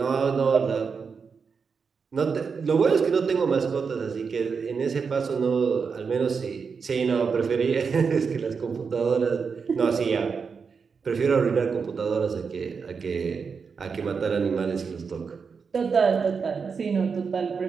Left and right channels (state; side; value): quieter; left; 5.6 dB